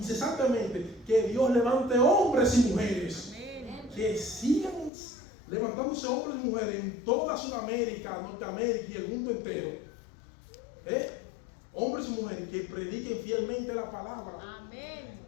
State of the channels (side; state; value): right; drops out; at 4.9 s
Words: que Dios levante hombres y mujeres. Amén. Que sigan levantándose hombres y mujeres en toda Sudamérica, Norteamérica y el mundo entero. Hombres y mujeres que prediquen fielmente la palabra. Amén.